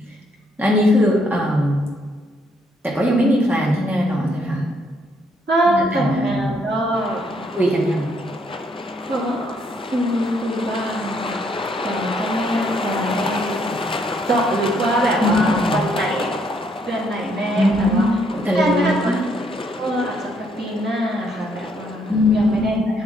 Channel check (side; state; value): both; normal; correlation 0.71